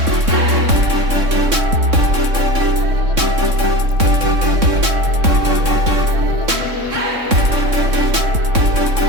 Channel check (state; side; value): late; left; 3.6 ms